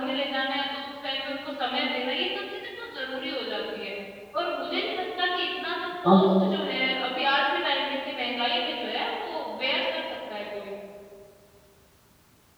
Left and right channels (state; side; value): identical; both; correlation 1.00